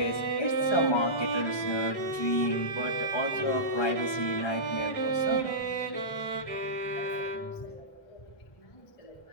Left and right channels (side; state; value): right; late; 1.2 ms